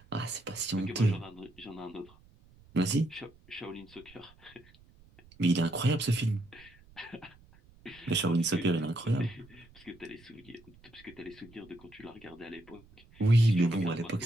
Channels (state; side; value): noise; right; rumble, 26 dB below the sound